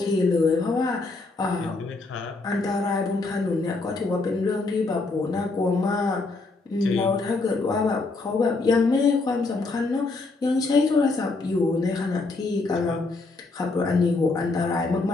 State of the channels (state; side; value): quieter; right; 3.6 dB